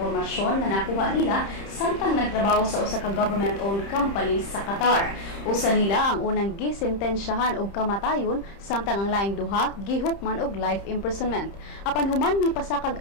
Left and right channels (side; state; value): right; late; 30 ms